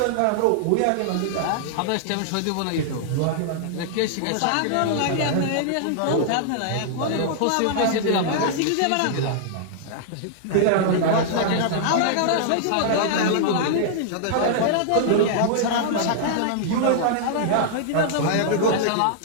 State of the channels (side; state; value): both; different; correlation -0.01